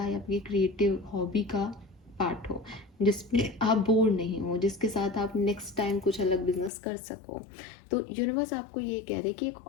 या आपकी क्रिएटिव हॉबी का पार्ट हो, जिसमें आप बोर नहीं हो, जिसके साथ आप नेक्स्ट टाइम कुछ अलग बिजनेस कर सको। तो यूनिवर्स आपको ये कह रहे कि एक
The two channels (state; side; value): drops out; right; at 6.7 s